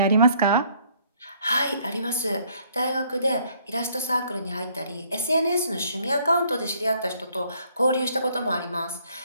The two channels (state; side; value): inverted; both; correlation -0.63